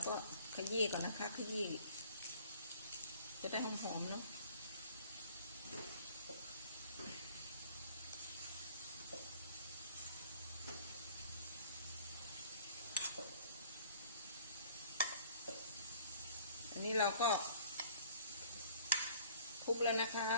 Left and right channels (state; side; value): inverted; both; correlation -0.53